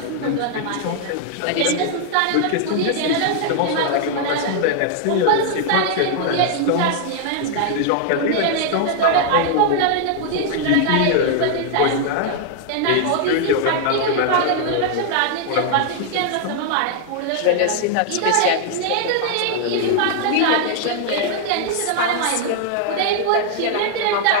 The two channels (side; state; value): both; different; correlation 0.00